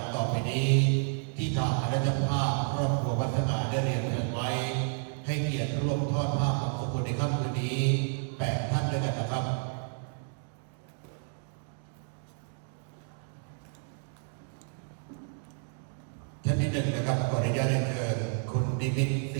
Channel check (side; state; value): left; silent; 57 dB below the other